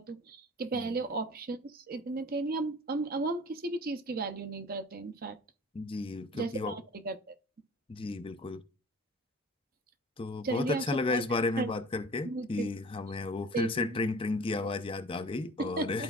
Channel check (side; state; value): both; normal; correlation 0.44